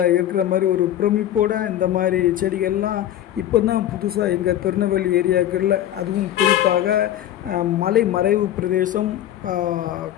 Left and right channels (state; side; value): quieter; right; 12.0 dB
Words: இருக்கிற மாதிரி ஒரு பிரமிப்போட இந்த மாதிரி செடிகள்லாம் இப்போ தான் புதுசாக எங்கள் திருநெல்வேலி ஏரியாக்களில், அதுவும் குறிப்பாக மலை மறைவு பிரதேசம்,